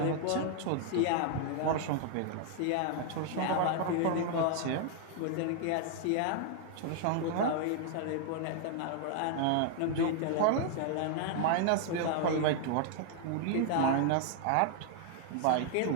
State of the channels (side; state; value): both; different; correlation 0.00